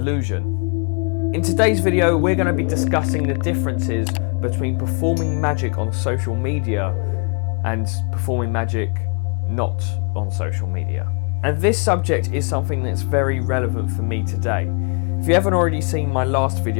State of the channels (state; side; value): quieter; right; 37.0 dB